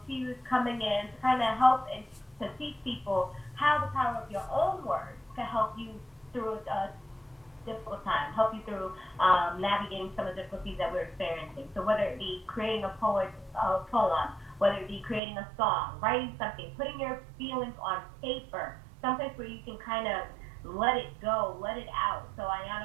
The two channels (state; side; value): drops out; left; at 15.2 s